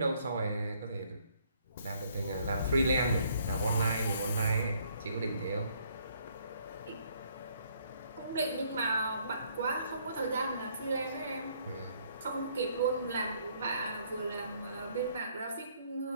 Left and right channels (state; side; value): inverted; both; correlation -0.66